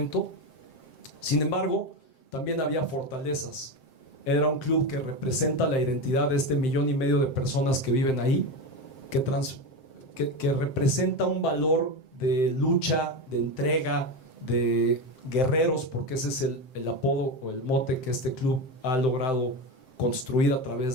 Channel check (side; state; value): right; late; 7.6 ms